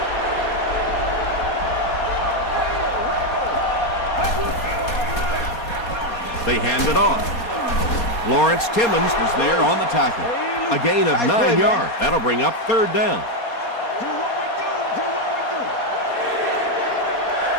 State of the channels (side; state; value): right; late; 4.2 ms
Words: They hand it off. Lawrence Timmons was there on the tackle. A gain of 9 yards. That'll bring up 3rd down.